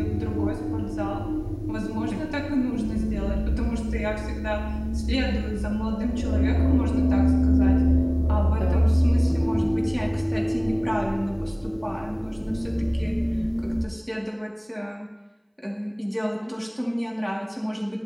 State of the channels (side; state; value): both; identical; correlation 1.00